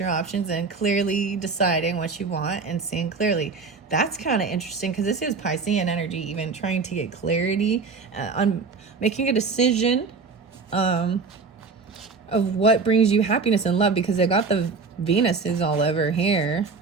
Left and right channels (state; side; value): quieter; left; 4.6 dB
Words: options and clearly deciding what you want and seeing clearly. That's kind of interesting because this is Piscean energy, even trying to get clarity on making a decision of what brings you happiness and love, because they got the Venuses all over here.